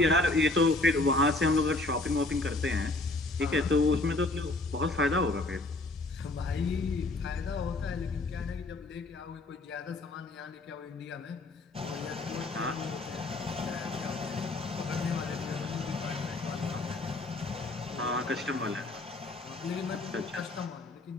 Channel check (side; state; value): right; quieter; 3.0 dB